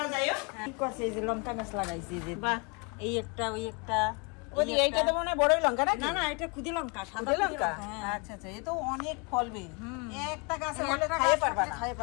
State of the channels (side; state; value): right; quieter; 31.8 dB